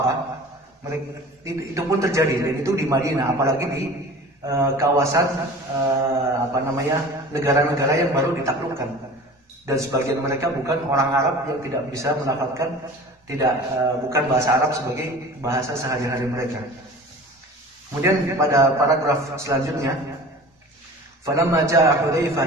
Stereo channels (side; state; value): both; normal; correlation 0.40